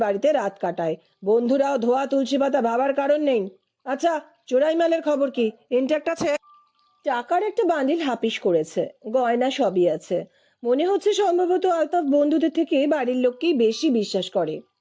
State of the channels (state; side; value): identical; both; correlation 1.00